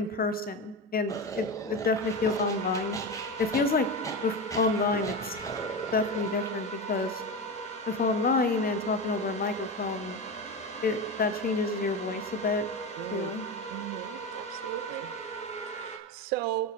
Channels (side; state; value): both; normal; correlation 0.21